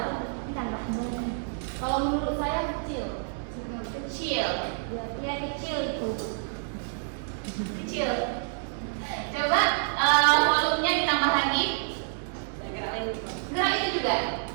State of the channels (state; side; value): silent; left; 59 dB below the other